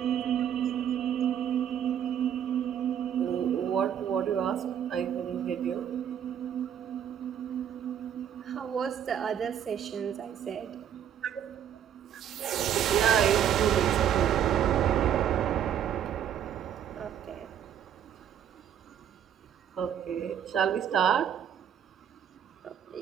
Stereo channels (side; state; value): left; quieter; 9.3 dB